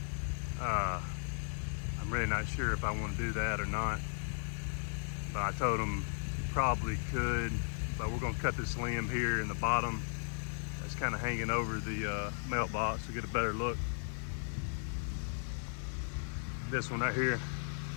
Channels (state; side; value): silent; right; 54 dB below the other